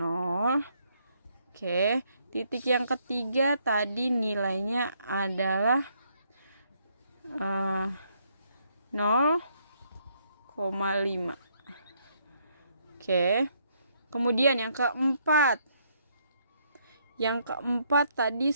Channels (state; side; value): inverted; both; correlation -0.72